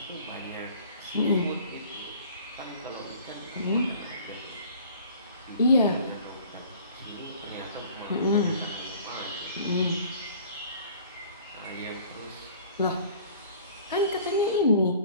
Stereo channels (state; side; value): inverted; both; correlation -0.50